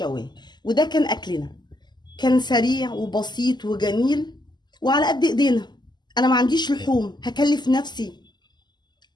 وده كان اكلنا، كان سريع وبسيط وجميل وعلى قد ايدينا. انا ما عنديش لحوم هكلف نفسي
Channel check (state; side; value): late; right; 0.21 ms